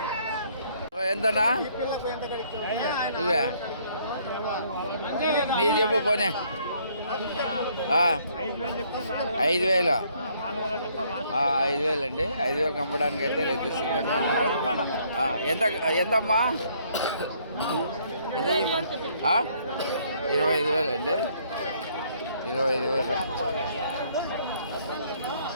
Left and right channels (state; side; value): inverted; both; correlation -0.65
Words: ఎంతనా? ఇవే నీ చెప్పు పోనీ. 5,000 అండి. 5,000కి అమ్మడానికి అయితే రైతు సిద్ధంగా ఉన్నారు. ఎంతమ్మా? ఎంత 25,000 అండి. 25,000.